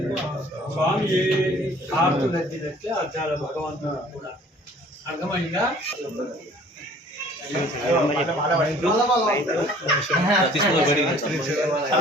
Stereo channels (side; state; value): both; normal; correlation 0.53